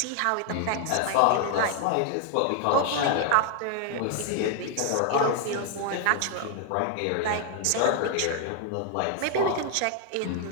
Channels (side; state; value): both; different; correlation 0.00